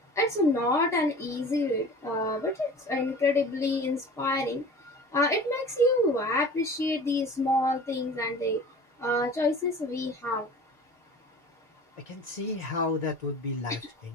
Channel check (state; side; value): normal; both; correlation 0.41